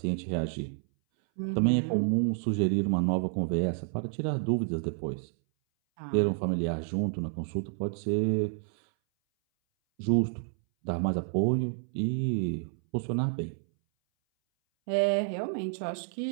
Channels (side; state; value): left; silent; 58 dB below the other